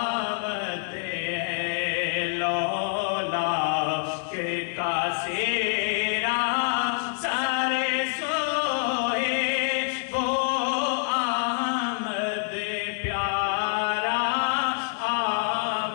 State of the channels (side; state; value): right; silent; digital silence